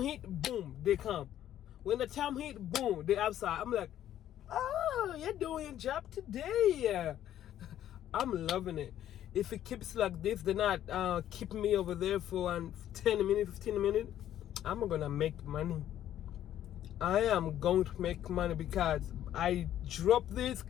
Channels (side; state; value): right; quieter; 11.6 dB